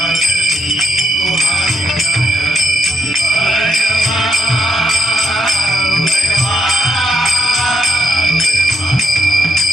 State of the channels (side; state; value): both; normal; correlation 0.79